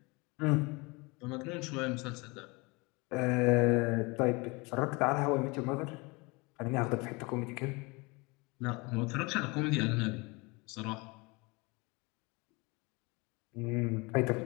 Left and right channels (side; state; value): right; quieter; 26.6 dB